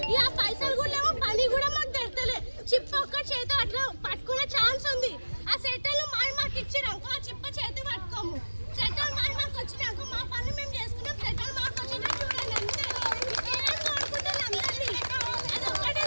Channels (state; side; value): inverted; both; correlation -1.00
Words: ఇక ఆ పైసలు కూడా లేవు, పని కూడా మాకు తెరతలే. చిప్ప ఒక్క చేతి అట్లా పట్టుకునే ఛాన్స్ ఉంది. ఆ సెటర్లు మాకు ఇచ్చినాక ఆ చిప్ప చేతి పట్టుకోము. సెటర్లు మాకు వచ్చినాక మా పని మేము చేసుకున్నాం. సెటర్లు మాకు వచ్చినా చూడండి అంతే. ఏం కోరుకుంటారు అందరినీ, అది ఒక్కటే